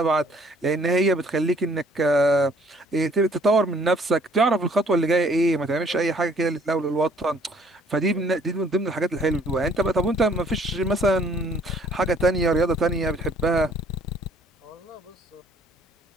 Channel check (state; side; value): normal; both; correlation 0.60